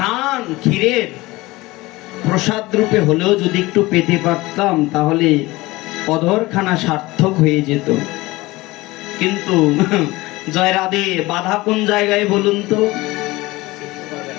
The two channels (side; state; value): right; quieter; 20.5 dB